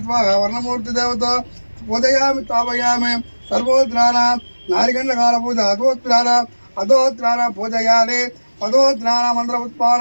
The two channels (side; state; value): both; inverted; correlation -1.00